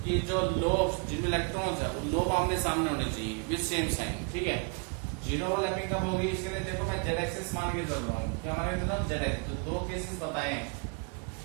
कि जो लोब्स जिनमें इलेक्ट्रॉन्स है, वो लोब आमने सामने होने चाहिए विद सेम साइन, ठीक है। जीरो ओवरलैपिंग कब होगी? इसके लिए देखो मैं जेड एक्सिस मान के चल रहा हूँ। क्या मान के चल रहा हूँ? Z axis. तो दो केसेस बताए।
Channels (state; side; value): quieter; left; 35.3 dB